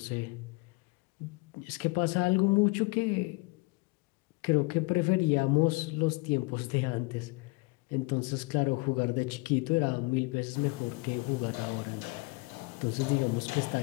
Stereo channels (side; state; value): right; quieter; 26.1 dB